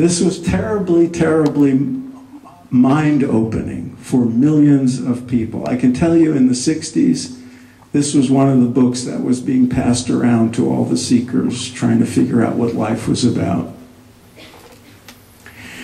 was terribly, terribly mind-opening for millions of people. I can tell you in the 60s, this was one of the books that was being passed around to all the seekers trying to figure out what life was about.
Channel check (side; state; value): both; identical; correlation 1.00